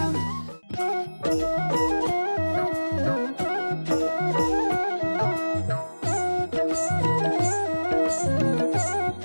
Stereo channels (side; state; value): both; inverted; correlation -1.00